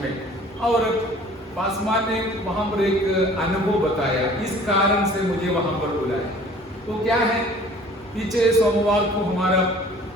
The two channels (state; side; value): normal; both; correlation 0.50